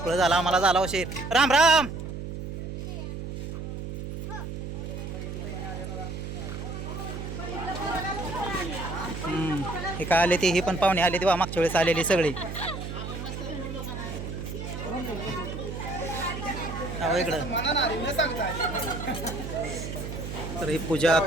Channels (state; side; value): noise; right; hum, 7 dB below the sound